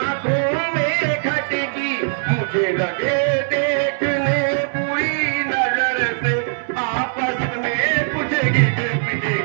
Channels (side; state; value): left; silent; digital silence